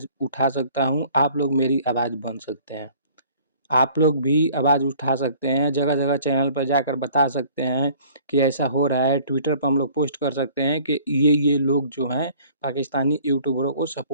उठा सकता हूँ, आप लोग मेरी आवाज़ बन सकते हैं। आप लोग भी आवाज़ उठा सकते हैं, जगह-जगह चैनल पर जाकर बता सकते हैं कि ऐसा हो रहा है। ट्विटर पर हम लोग पोस्ट कर सकते हैं कि ये लोग जो हैं पाकिस्तानी यूट्यूबरों को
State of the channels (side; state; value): both; inverted; correlation -0.53